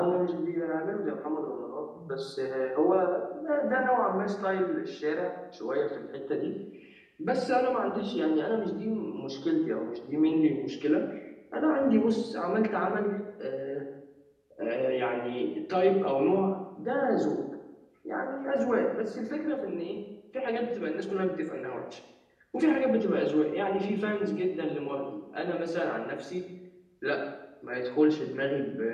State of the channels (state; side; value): identical; both; correlation 1.00